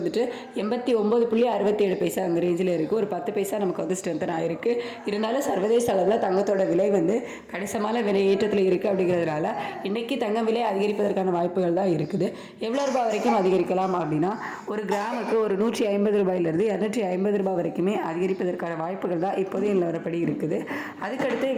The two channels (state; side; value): identical; both; correlation 1.00